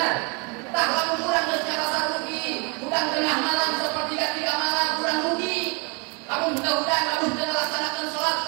Tak lamun kurang geus ngarasa rugi, udang tengah malam sepertiga malam kurang rugi. Lamun udang lamun teu ngalaksanakeun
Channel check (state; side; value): quieter; left; 32.1 dB